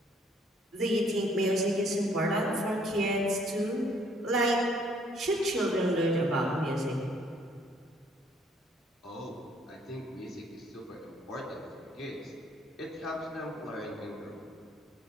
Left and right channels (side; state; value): both; normal; correlation 0.63